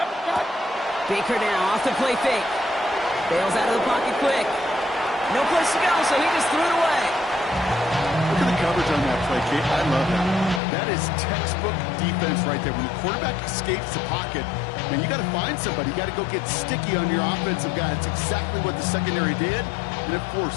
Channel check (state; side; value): drops out; right; at 10.6 s